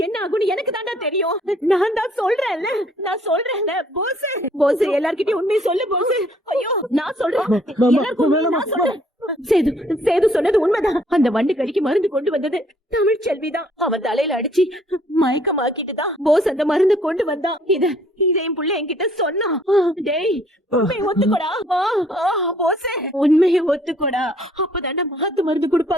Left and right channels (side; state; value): both; normal; correlation 0.62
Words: என்ன ஆகும்னு எனக்கு தாண்டா தெரியும். நான் தான் சொல்றேன்ல போஸ் எல்லார்கிட்டயும் உண்மையை சொல்லு போஸ். ஐயோ நான் சொல்றேன், எல்லாருக்கும் நான் சொல்றேன். சேது சொன்னது உண்மைதான். அந்த வண்டு கடிக்கு மருந்து கொண்டு வந்தது தமிழ்ச்செல்விதான். அவன் தலையில அடிச்சு மயக்கமாக்கிட்டு தான் போஸ் அந்த மருந்து கொண்டு வந்தான். இதையும் புள்ள என்கிட்ட சொன்னான். டேய் உண்மையை ஒத்துக்கோடா போஸ், உண்மையை ஒத்துக்கோடா. அப்பதாண்டா மாத்து மருந்து